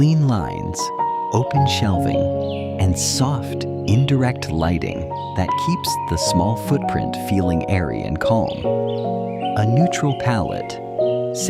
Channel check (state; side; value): identical; both; correlation 1.00